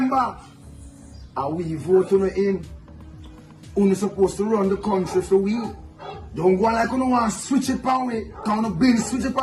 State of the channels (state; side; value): identical; both; correlation 1.00